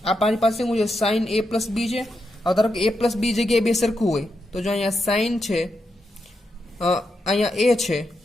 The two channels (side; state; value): both; normal; correlation 0.85